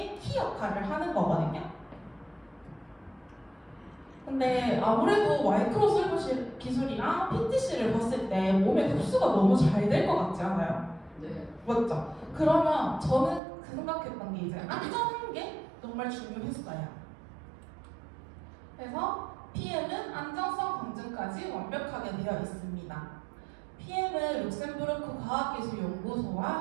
키 역할을 하는 거거든요. 근데 아무래도 마이크로 슬브 기술이랑 PTC를 봤을 때 몸에 흡수가 너무 잘 될 것 같지 않아요? 네. 맞죠? 그러면 저는 그 생각했던 게 이제 안전한 게 정말 중요했어요. 그래서 PM은 안전성 검증까지 완벽하게 되어 있습니다. PM은 룩셈부르크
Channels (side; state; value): left; drops out; at 13.4 s